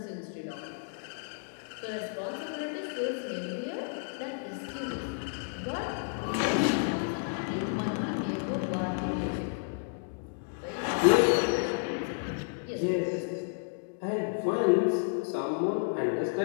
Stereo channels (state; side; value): silent; right; digital silence